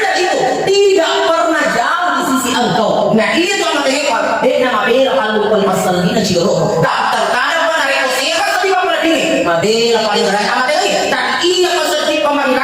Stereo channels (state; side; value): identical; both; correlation 1.00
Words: itu tidak pernah jauh di sisi engkau. Nah, itu dia nama bela kalau bukan masalah ini ciro tak terkadang mana rekosi kan tadi apa ini mabela paling berat amat ini tak iya maksudnya